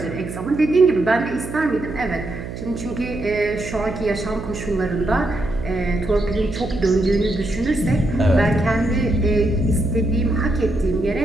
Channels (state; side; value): noise; right; hum, 9 dB below the sound